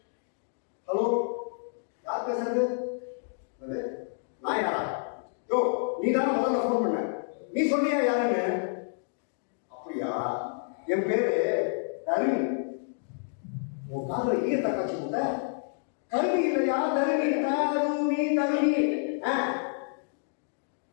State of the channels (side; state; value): right; silent; digital silence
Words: ஹலோ, யார் பேசுறது? நான் யாரா? யோ, நீ தானே முதல்ல ஃபோன் பண்ண. நீ சொன்னியா யாருன்னு? அப்படியா? என் பேரு தருணி. உன் காதல ஈயத்தை காட்சி போட்ட கல்வி இல்லையா? தருணி தருணி.